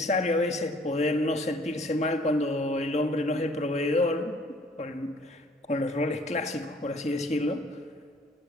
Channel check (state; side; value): normal; both; correlation 0.57